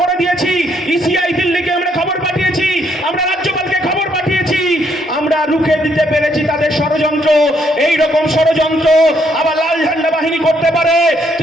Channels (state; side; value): normal; both; correlation 0.71